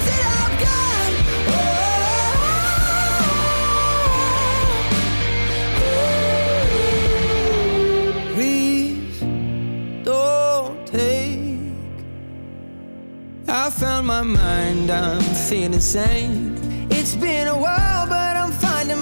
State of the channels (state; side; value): inverted; both; correlation -1.00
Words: that I've got. Please don't take. I found my mind, I'm feeling sane. It's been a while, but I'm finding